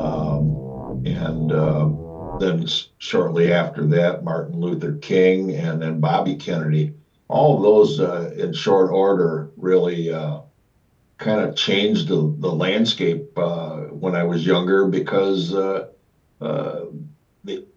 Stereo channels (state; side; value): identical; both; correlation 1.00